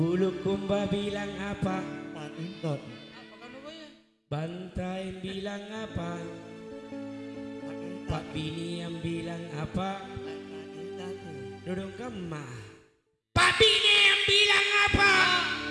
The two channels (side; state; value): both; identical; correlation 1.00